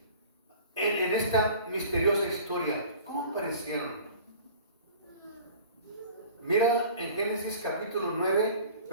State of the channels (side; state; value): both; inverted; correlation -0.44